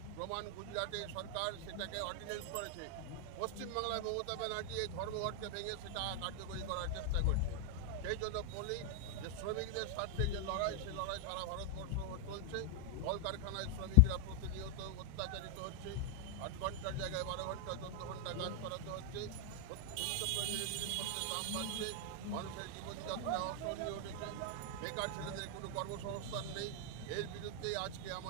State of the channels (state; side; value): different; both; correlation 0.00